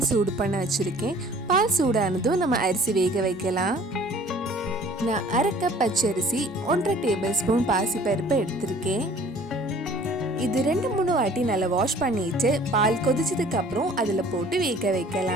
சூடு பண்ண வச்சுருக்கேன். பால் சூடானதும் நம்ம அரிசி வேக வைக்கலாம். நான் 1/2 கப் பச்சரிசி 1.5 டேபிள் ஸ்பூன் பாசி பருப்பை எடுத்திருக்கேன். இது 2-3 வாட்டி நல்லா வாஷ் பண்ணிட்டு பால் கொதிச்சதுக்கு அப்புறம் அதில் போட்டு வேக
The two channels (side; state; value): both; normal; correlation 0.51